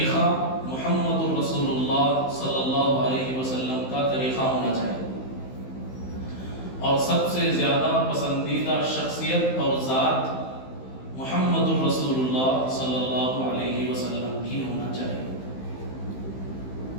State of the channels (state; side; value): late; right; 15 ms